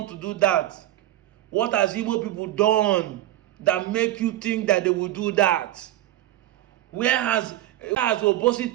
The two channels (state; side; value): quieter; left; 14.0 dB